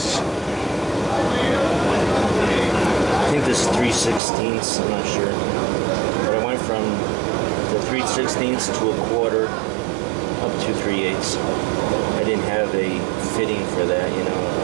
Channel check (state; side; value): drops out; left; at 4.2 s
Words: I think this is 3/16, I'm not sure, but I went from the 3/16 to a quarter up to 3/8. I didn't have a fitting for that,